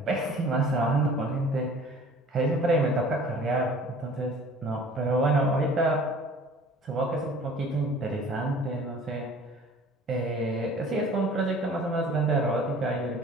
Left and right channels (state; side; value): normal; both; correlation 0.48